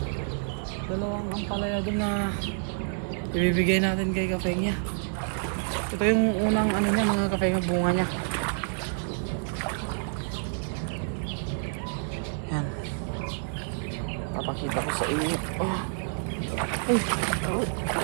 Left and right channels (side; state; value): left; silent; digital silence